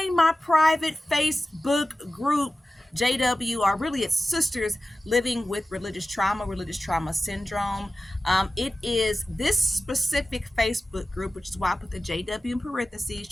my private Facebook group, JW, or really it's Sisters Living with Religious Trauma Syndrome. It is this specific Facebook group, which is why I put the JW in parentheses,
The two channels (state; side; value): normal; both; correlation 0.95